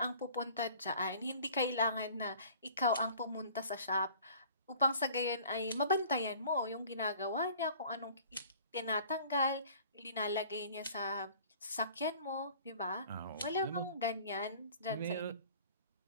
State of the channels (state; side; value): inverted; both; correlation -0.49